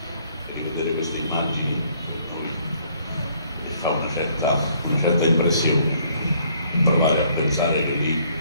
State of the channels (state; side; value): inverted; both; correlation -0.64